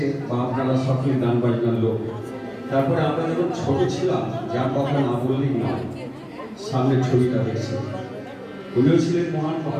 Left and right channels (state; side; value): identical; both; correlation 1.00